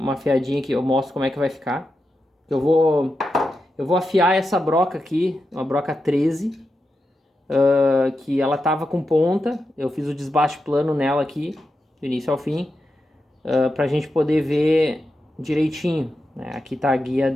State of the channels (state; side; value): normal; both; correlation 0.88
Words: afiadinha aqui, eu mostro como é que vai ficar. Eu vou afiar essa broca aqui, uma broca 13, que ela tava com ponta. Eu fiz o desbaste plano nela aqui, do início ao fim, pra gente poder ver direitinho, né? Aqui tá a guia